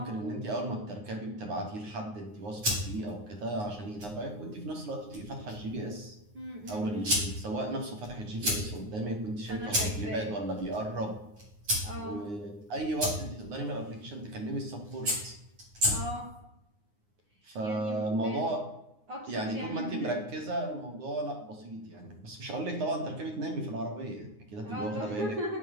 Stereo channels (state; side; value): late; left; 9.6 ms